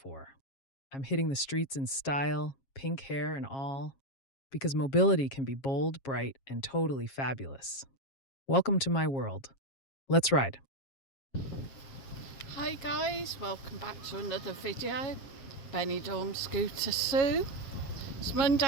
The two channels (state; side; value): late; right; 7.4 ms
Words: I'm hitting the streets in style, pink hair and all, because mobility can be bold, bright, and totally fabulous. Welcome to my world. Let's ride. Hi guys, welcome back to another video. Benidorm Scooter Sue. It's